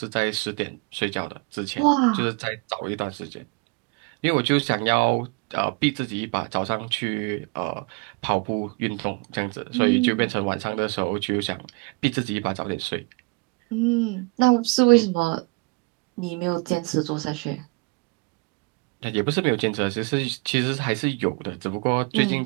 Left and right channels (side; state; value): left; quieter; 29.1 dB